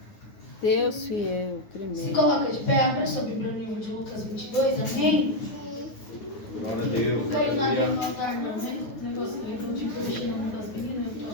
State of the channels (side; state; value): right; late; 9.5 ms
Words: Deus fiel, tremendo. Se coloca de pé, abra sua Bíblia no livro de Lucas 22, amém? Glória a Deus. Não caiu nada no altar não, né? O negócio do livro de coisa cheia na mão das meninas, eu tô